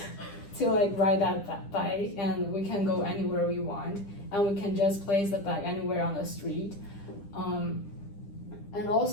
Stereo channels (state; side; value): late; right; 10 ms